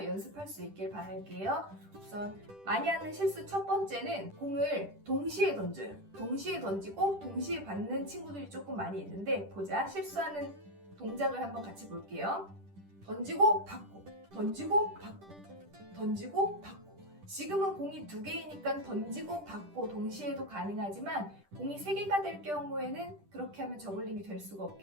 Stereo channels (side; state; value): left; late; 10 ms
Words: 연습할 수 있길 바랄게요. 우선 많이 하는 실수 첫 번째는 공을 동시에 던져요. 동시에 던지고 동시에 받는 친구들이 조금 많이 있는데 보자. 실수하는 동작을 한번 같이 볼게요. 던지고 받고, 던지고 받고, 던지고 받고. 지금은 공이 2개이니까 던지고 받고 동시에도 가능하지만 공이 3개가 될 경우에는 그렇게 하면 저글링이 될 수가